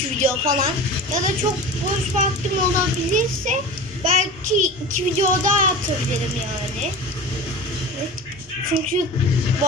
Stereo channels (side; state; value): both; normal; correlation 0.33